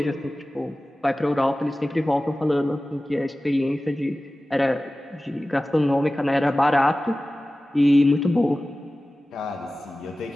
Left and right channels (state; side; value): normal; both; correlation 0.96